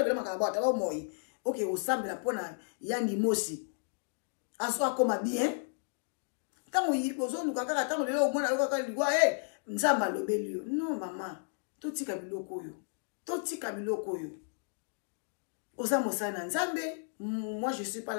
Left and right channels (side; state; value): right; silent; digital silence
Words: on a un makaba moi. Ok, au sein de la pona, il y a des mots aussi. En soi, comme bien. Quand on y pose, nous, quand on est là, au moins, on a dit, Nzamba lobelio. Non, maman. totika biloko oyo. Totika biloko oyo. Oza mosana nzambe. Moi, je ne suis pas